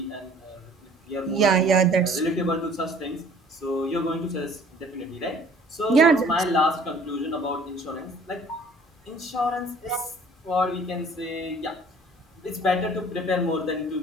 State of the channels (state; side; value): normal; both; correlation 0.53